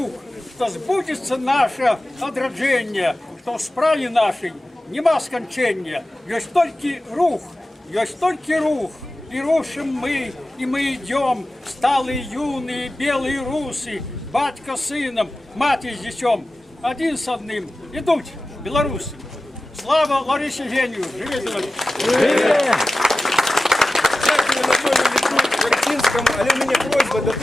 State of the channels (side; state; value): both; normal; correlation 0.94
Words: что сбудется наше одраджение, что в справе нашей нема скончения, есть только рух, и рушим мы, и мы идем, сталые юные белые русы, батька с сыном, мать с детем, один с одним, идут белорусы. Слава Ларисе Геню! Живе Беларусь! Дякую Анатолію Вертинському, але у мене просьба до